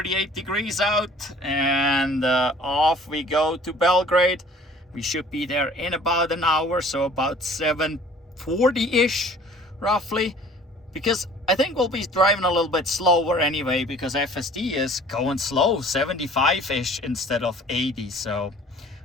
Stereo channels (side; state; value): both; normal; correlation 0.50